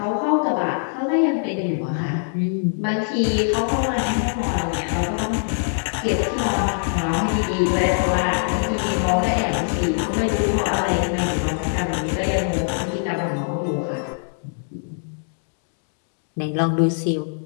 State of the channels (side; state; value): right; silent; digital silence